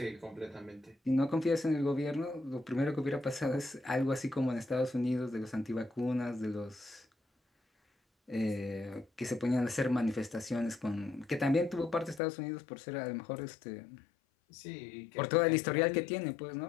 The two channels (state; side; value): drops out; right; at 12.2 s